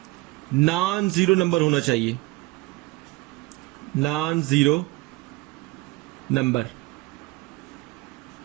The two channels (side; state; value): left; quieter; 22.1 dB